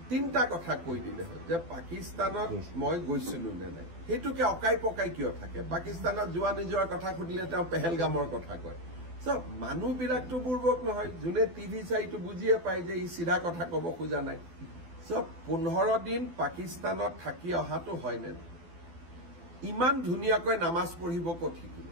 তিনিটা কথা কৈ দিলে হয় যে পাকিস্তানত মই গৈছিলো নে নাই সেইটোকে অকাই পকাই কিয় থাকে পাকিস্তানত যোৱা নিজৰ কথা সুধিলে তেওঁ পেহেলগামৰ কথা কয় সব মানুহবিলাকতো বুৰ্বক নহয় যোনে টিভি চাইটো বুজিয়ে পায় যে ই সিধা কথা ক'ব খোজা নাই সব 15 দিন পাকিস্তানত থাকি অহাটো হয় নে ইমান ধুনীয়াকৈ নামাজ পঢ়িব ক'ত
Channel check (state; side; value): late; left; 12 ms